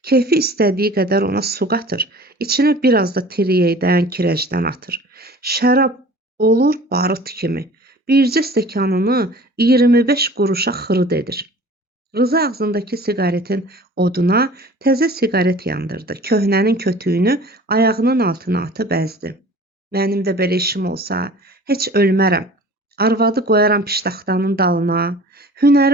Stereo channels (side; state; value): both; normal; correlation 0.45